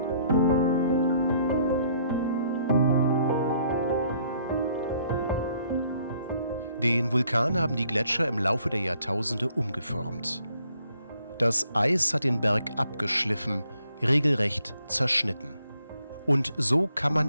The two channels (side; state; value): both; inverted; correlation -0.67